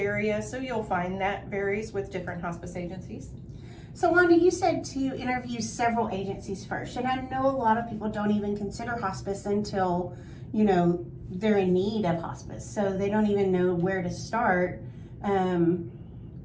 so you'll find that varies with different hospice agencies. So Wanda, you said to interview several agencies first, and I know a lot of people don't even consider hospice until, they're in need of hospice, so they don't even know where to start.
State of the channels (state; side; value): identical; both; correlation 1.00